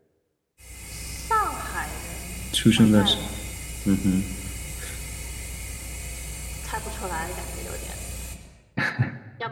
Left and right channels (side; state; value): both; identical; correlation 1.00